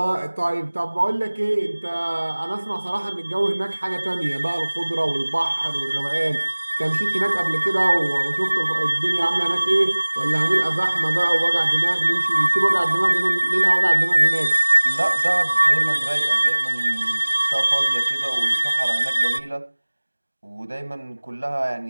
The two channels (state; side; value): inverted; both; correlation -1.00